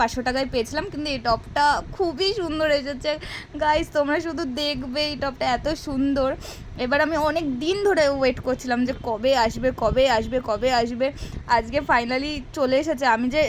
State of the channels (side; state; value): both; identical; correlation 1.00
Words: টাকায় পেয়েছিলাম। কিন্তু এই টপটা খুবই সুন্দর এসেছে গাইস, তোমরা শুধু দেখবে, এই টপটা এত সুন্দর। এবার আমি অনেক দিন ধরে ওয়েট করছিলাম যে কবে আসবে। আজকে ফাইনালি চলে এসেছে। আমি যে